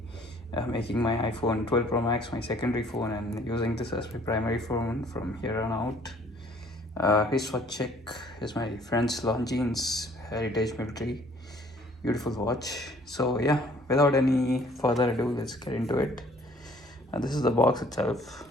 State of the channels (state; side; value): normal; both; correlation 0.58